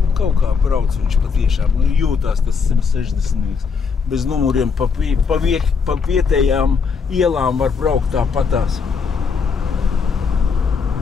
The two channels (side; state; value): right; quieter; 5.5 dB